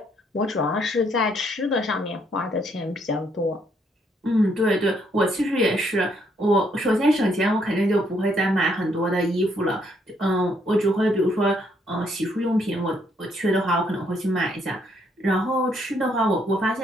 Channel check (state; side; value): normal; both; correlation 0.71